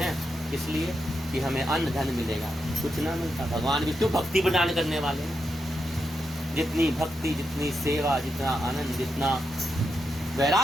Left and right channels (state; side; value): normal; both; correlation 0.85